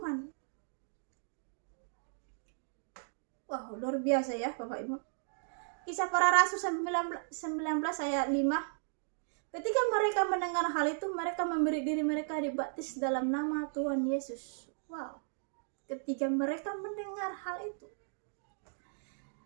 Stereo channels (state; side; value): silent; left; digital silence